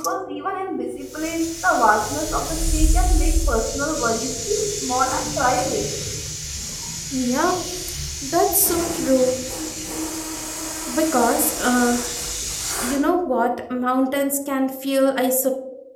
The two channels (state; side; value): identical; both; correlation 1.00